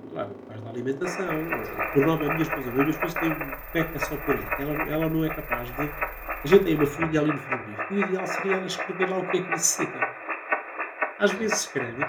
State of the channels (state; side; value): identical; both; correlation 1.00